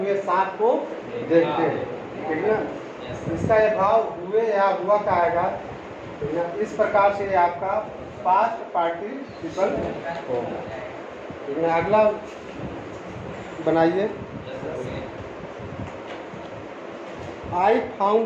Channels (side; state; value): both; identical; correlation 1.00